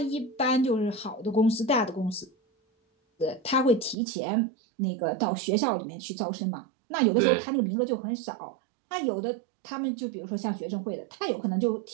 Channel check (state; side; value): drops out; left; at 4.0 s